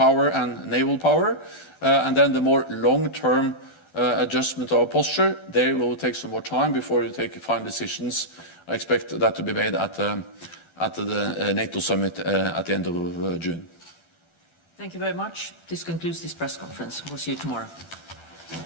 and naval power, and then the more long-term adjustment of our posture. There will take some more time before we take final decisions. I expect that to be made at the NATO summit at the end of June. Thank you very much. This concludes this press conference. We'll see you tomorrow.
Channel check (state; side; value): late; right; 12 ms